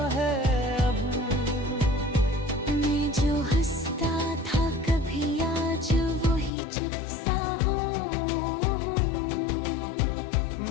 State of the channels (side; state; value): right; drops out; at 6.5 s